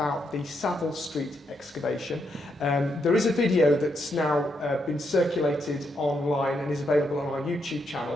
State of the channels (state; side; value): normal; both; correlation 0.79